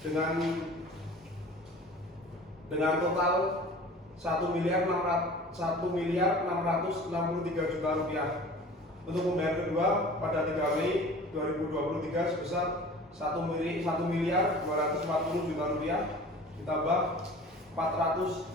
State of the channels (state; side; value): normal; both; correlation 0.42